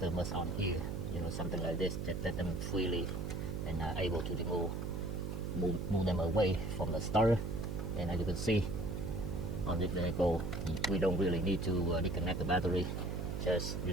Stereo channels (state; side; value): noise; right; hum, 3 dB below the sound